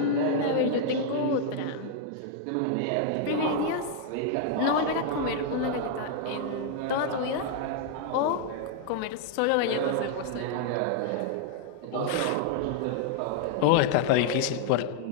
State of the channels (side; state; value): both; different; correlation -0.01